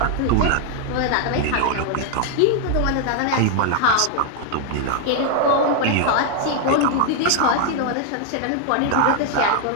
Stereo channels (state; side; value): different; both; correlation 0.00